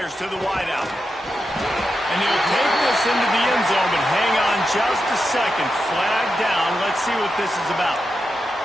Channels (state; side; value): normal; both; correlation 0.88